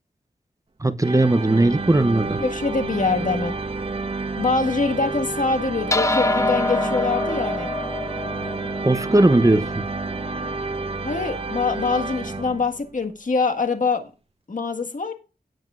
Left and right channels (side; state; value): both; normal; correlation 0.62